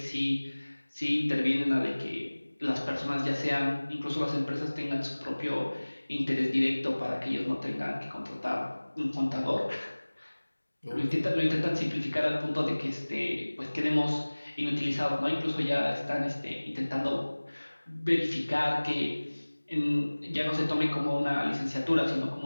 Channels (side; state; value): both; inverted; correlation -1.00